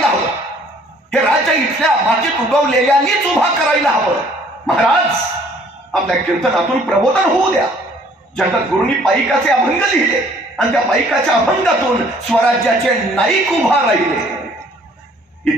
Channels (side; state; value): both; normal; correlation 0.58